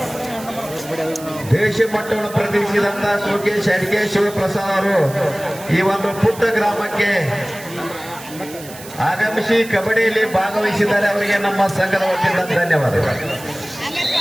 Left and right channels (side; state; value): right; noise; hiss, 16 dB below the sound